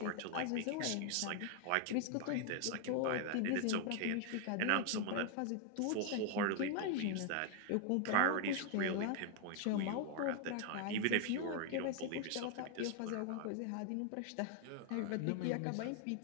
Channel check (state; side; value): different; both; correlation 0.00